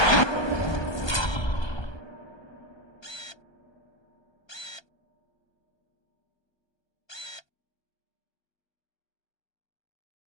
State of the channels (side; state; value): right; late; 1.2 ms